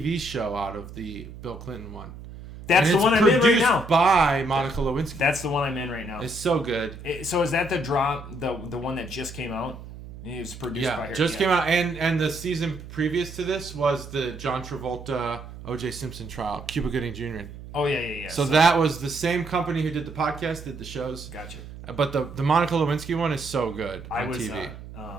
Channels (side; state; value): right; noise; hum, 14 dB below the sound